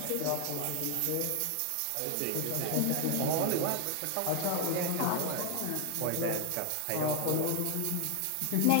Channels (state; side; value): different; both; correlation 0.00